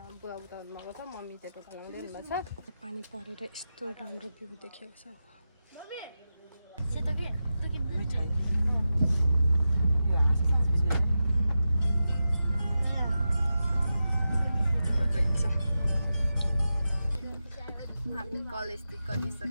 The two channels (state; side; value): inverted; both; correlation -0.91